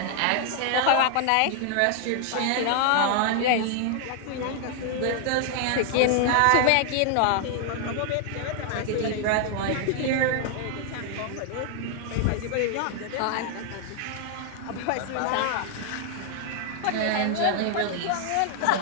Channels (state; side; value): different; both; correlation 0.00